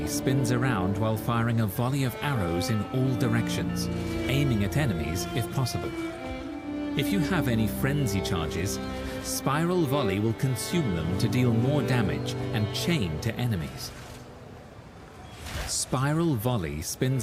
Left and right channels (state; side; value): identical; both; correlation 1.00